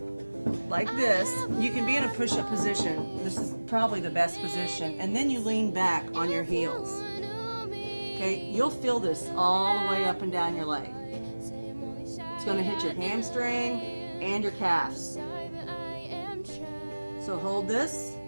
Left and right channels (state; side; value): inverted; both; correlation -1.00